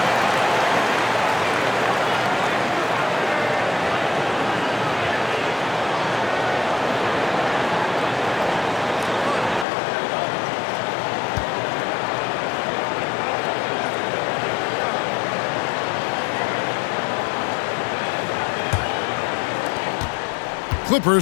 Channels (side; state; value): right; drops out; at 9.7 s